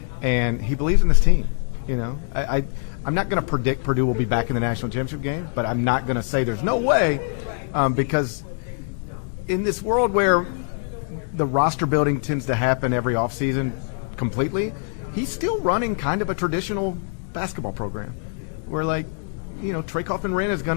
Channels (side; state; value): right; silent; 63 dB below the other